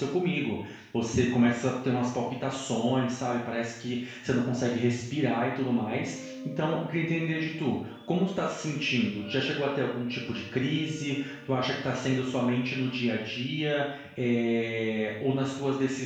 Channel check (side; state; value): both; identical; correlation 1.00